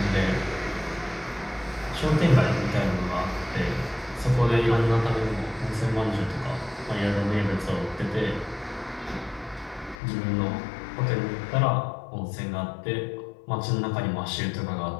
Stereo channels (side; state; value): right; drops out; at 10.0 s